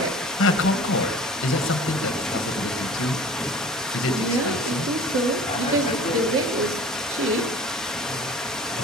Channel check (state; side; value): normal; both; correlation 0.44